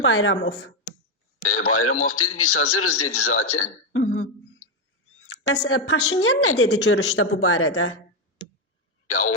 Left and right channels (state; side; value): normal; both; correlation 0.05